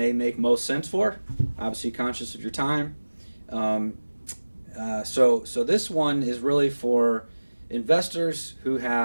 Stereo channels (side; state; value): both; inverted; correlation -1.00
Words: make most sense for. Obviously conscious of your time. So this one is really for investors who